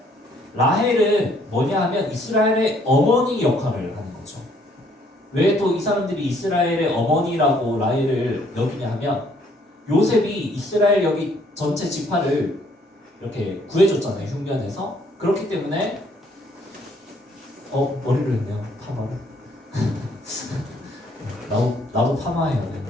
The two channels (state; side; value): normal; both; correlation 0.65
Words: 라헬은 뭐냐 하면 이스라엘의 어머니 역할을 하는 거죠. 왜 또 이 사람들이 이스라엘의 어머니라고 라헬을 여기냐 하면, 요셉이 이스라엘 여기 전체 지파를 이렇게 구해줬잖아요, 흉년에서. 그렇기 때문에 머리를 했네요, 파마를. 나도 파마해야 돼.